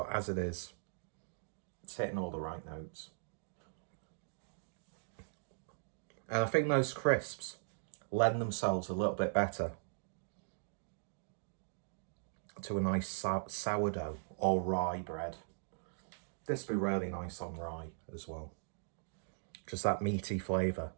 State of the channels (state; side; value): silent; left; digital silence